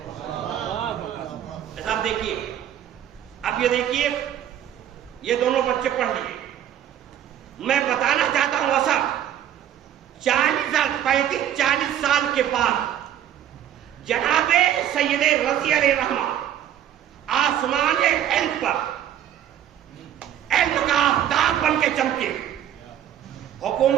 ایسا آپ دیکھیے، اب یہ دیکھیے یہ دونوں بچے پڑھ لیے، میں بتانا چاہتا ہوں اصل 40 سال کے بعد جناب سید رضی علیہ رحمہ آسمان علم پر علم کا آفتاب بن کے چمکے،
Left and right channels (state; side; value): quieter; left; 10.7 dB